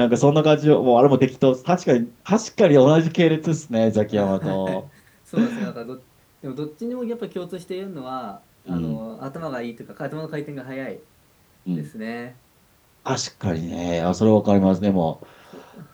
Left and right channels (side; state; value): both; identical; correlation 1.00